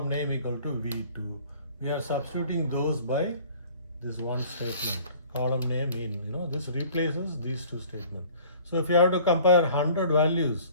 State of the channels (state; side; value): inverted; both; correlation -0.50